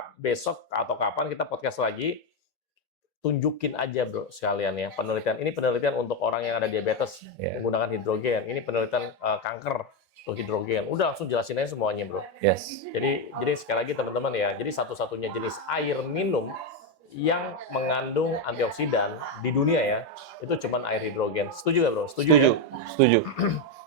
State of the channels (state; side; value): normal; both; correlation 0.07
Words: besok atau kapan kita podcast lagi, tunjukin aja bro sekalian ya penelitian. Ini penelitian untuk orang yang ada diabetes menggunakan hidrogen. Ini penelitian kanker untuk hidrogen. Udah langsung jelasin aja semuanya bro. Jadi sekali lagi teman-teman ya, jadi satu-satunya jenis air minum yang mengandung antioksidan di dunia ya, itu cuman air hidrogen. Setuju nggak bro? Setuju ya? Setuju.